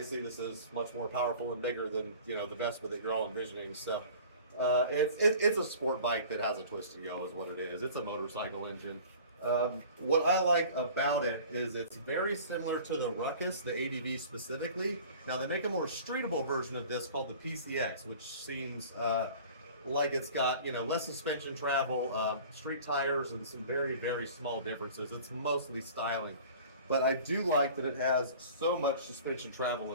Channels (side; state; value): both; inverted; correlation -0.44